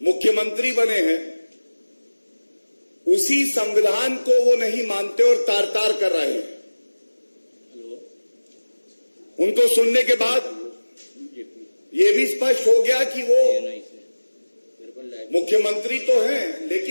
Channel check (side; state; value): both; inverted; correlation -1.00